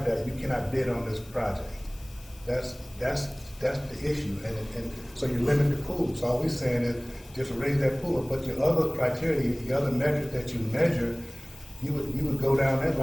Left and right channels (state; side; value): noise; left; hiss, 23 dB below the sound